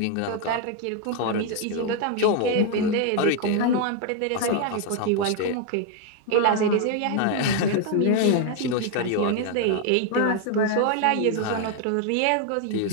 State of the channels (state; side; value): different; both; correlation 0.01